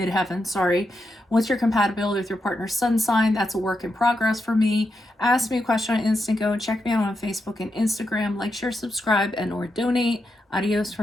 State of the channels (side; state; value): both; normal; correlation 0.85